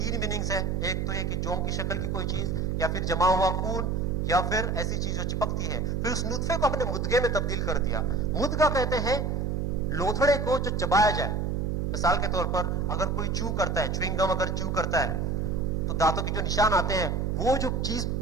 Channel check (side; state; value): right; noise; hum, 1 dB below the sound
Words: میننگز ہیں. ایک تو یہ کہ جون کی شکل کی کوئی چیز, یا پھر جمع ہوا خون, یا پھر ایسی چیز جو چپکتی ہے. پھر اس نطفے کو اپنے مدغے میں تبدیل کر دیا. مدغہ کہتے ہیں لوتھڑے کو جو چبایا جائے. مثال کے طور پر اگر کوئی چو کرتا ہے, چوئنگم اگر چو کرتا ہے تو دانتوں کے جو نشان آتے ہیں, وہ جو چیز